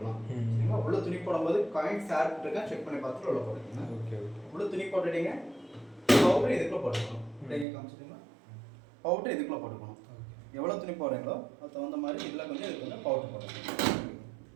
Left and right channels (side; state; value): left; drops out; at 7.7 s